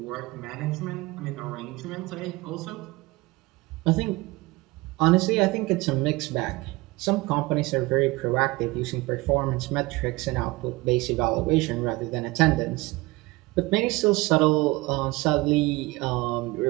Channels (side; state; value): left; quieter; 22.2 dB